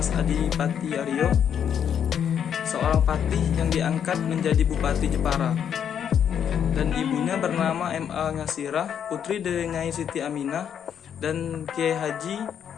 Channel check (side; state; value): right; quieter; 8.5 dB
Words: Adipati Aryo, seorang patih yang diangkat menjadi Bupati Jepara. Dan ibunya bernama M.A. Ngasirah, putri dari Nyai Siti Aminah dan Kiai